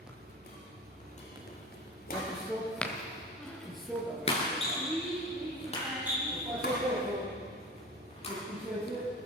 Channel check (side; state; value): both; normal; correlation 0.34